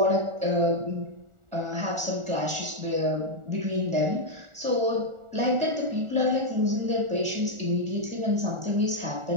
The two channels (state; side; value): late; left; 1.4 ms